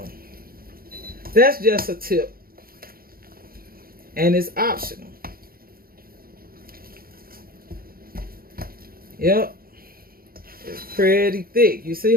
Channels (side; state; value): left; late; 0.43 ms